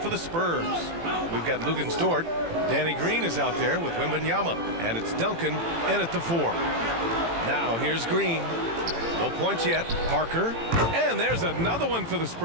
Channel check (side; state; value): left; late; 18 ms